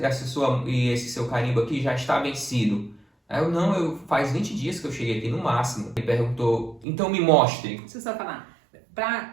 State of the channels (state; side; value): drops out; left; at 6.9 s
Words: seu carimbo aqui já está vencido. Aí eu faz 20 dias que eu cheguei aqui no máximo. Ele perguntou: então me mostre. Deixa eu só falar.